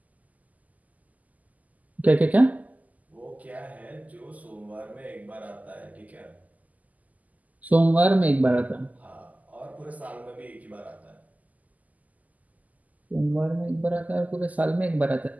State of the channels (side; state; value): left; late; 0.078 ms